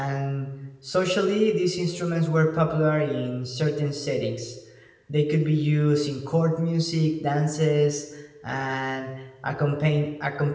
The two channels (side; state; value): both; identical; correlation 1.00